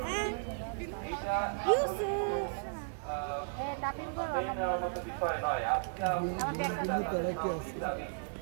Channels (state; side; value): silent; left; 55 dB below the other